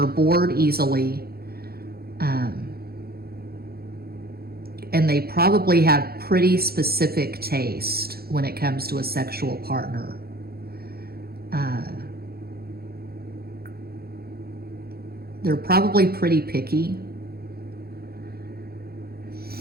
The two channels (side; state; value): left; late; 0.45 ms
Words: bored easily. And they probably have pretty specific taste when it comes to a sexual partner. They're probably pretty picky.